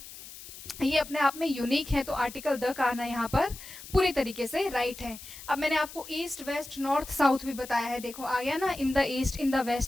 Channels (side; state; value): left; noise; hiss, 15 dB below the sound